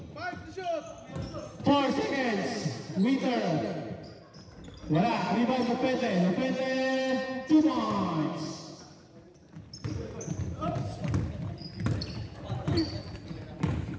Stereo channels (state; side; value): identical; both; correlation 1.00